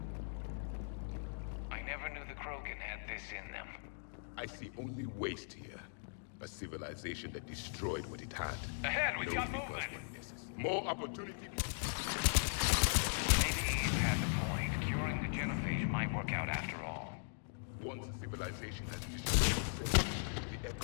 I never knew the Krogan had this in them. I see only waste here. A civilization that destroyed what it had. Ahead, we've got movement! More opportunity. Maybe Eve has a point. Curing the genophage might work out after all. Once a civilization has destroyed itself, the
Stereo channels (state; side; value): silent; right; digital silence